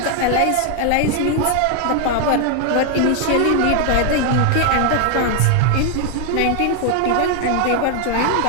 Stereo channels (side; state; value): both; different; correlation 0.00